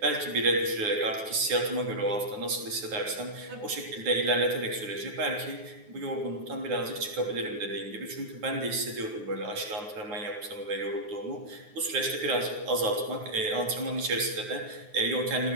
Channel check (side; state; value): left; late; 9.4 ms